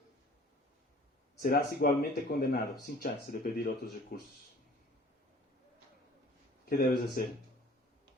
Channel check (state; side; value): normal; both; correlation 0.50